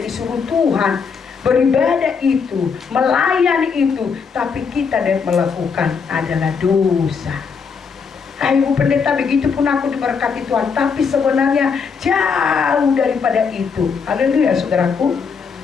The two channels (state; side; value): quieter; right; 5.8 dB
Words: disuruh Tuhan, beribadah itu, melayani itu, tapi kita dan melakukan adalah dosa. Ibu pendeta, begitu pun aku diberkati Tuhan, tapi sebenarnya jauh daripada itu. Haleluya, saudaraku.